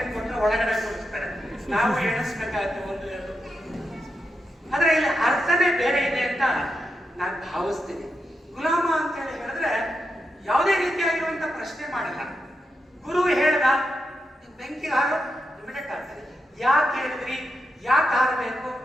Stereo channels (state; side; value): normal; both; correlation 0.86